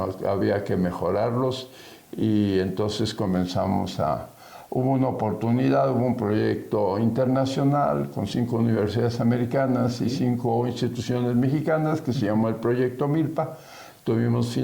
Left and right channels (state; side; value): identical; both; correlation 1.00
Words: que había que mejorarlos, y entonces hubo una oportunidad, hubo un proyecto internacional con 5 universidades americanas y 5 instituciones mexicanas que se llamó el Proyecto Milpa. Tuvimos